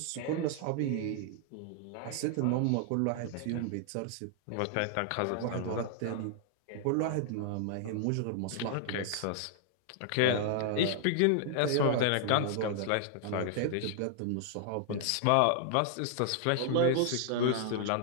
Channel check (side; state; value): both; different; correlation 0.00